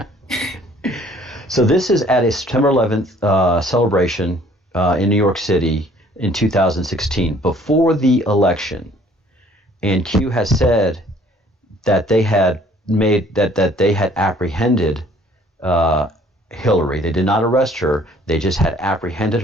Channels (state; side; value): normal; both; correlation 0.57